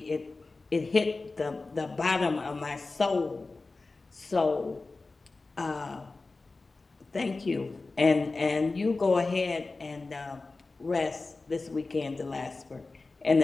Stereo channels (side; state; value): right; quieter; 3.6 dB